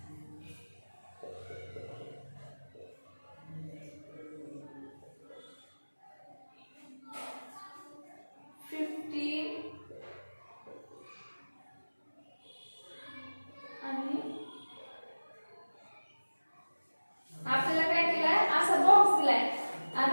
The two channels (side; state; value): both; inverted; correlation -1.00